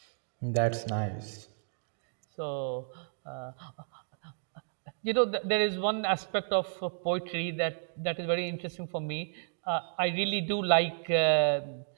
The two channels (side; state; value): left; silent; digital silence